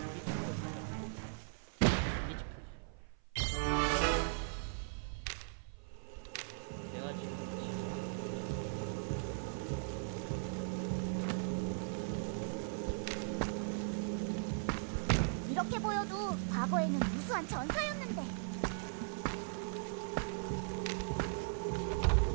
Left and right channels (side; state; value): left; silent; 52 dB below the other